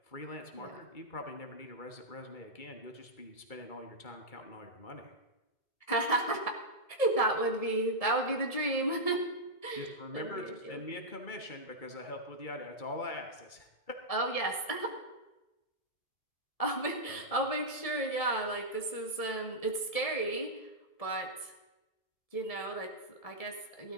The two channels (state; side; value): late; right; 1.7 ms